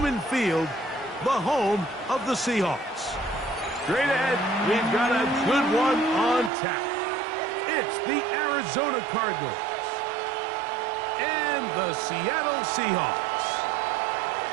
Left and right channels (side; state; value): left; drops out; at 6.5 s